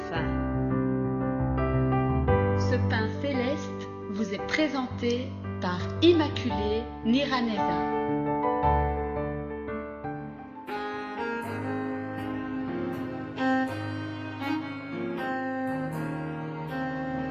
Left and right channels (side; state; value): both; identical; correlation 1.00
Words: Ce pain céleste vous est présenté par Immaculée Niraneza.